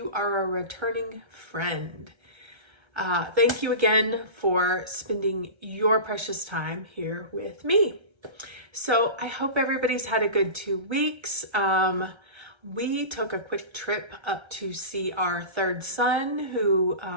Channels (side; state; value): left; late; 1.3 ms